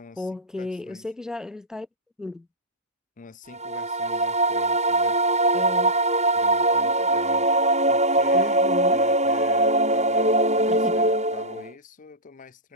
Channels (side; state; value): both; normal; correlation -0.18